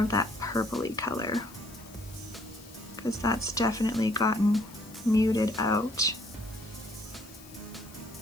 of that purpley color because that's definitely gotten muted out.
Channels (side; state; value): left; noise; hiss, 20 dB below the sound